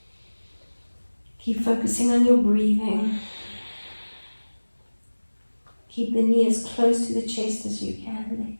Keep focusing on your breathing. Keep the knee as close to the chest as you can.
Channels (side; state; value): both; inverted; correlation -1.00